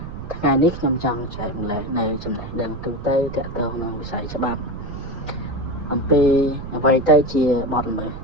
ថ្ងៃនេះខ្ញុំចង់ចែកម្លែកនៅចំណេះដឹងទូទៅទាក់ទងនឹងវិស័យច្បាប់អំពីអ្វីទៅជាបទល្មើស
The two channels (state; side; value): noise; right; rumble, 10 dB below the sound